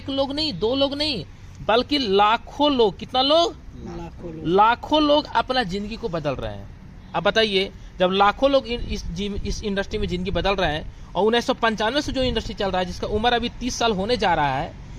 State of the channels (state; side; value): identical; both; correlation 1.00